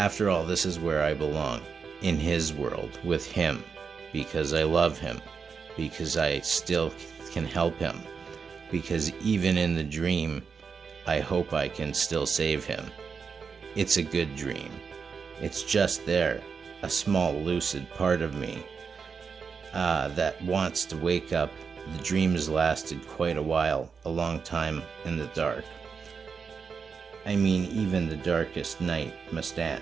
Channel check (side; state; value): left; quieter; 5.7 dB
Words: all, this is where I belong, in his world, with him, because I love him, because I still can help him, because even in the dream, I hope I can still save him. It's a good dream. It's just there, a small lucid part of me that wants to wake up. The dream has lasted quite a while, a long time in the dark. I mean, even the darkest night must